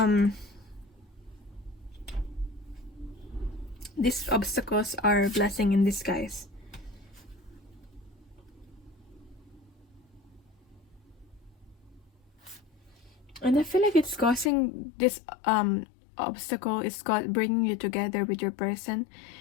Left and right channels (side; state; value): right; drops out; at 14.5 s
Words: these obstacles are a blessing in disguise. And I feel like it's causing this obstacle is bringing you together with your person,